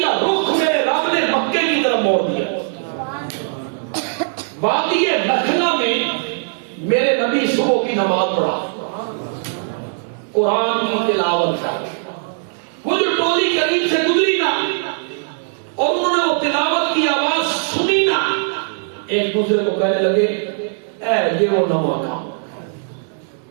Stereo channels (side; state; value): left; silent; digital silence